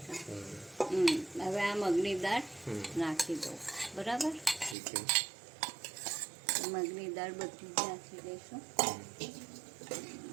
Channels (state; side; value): drops out; left; at 4.8 s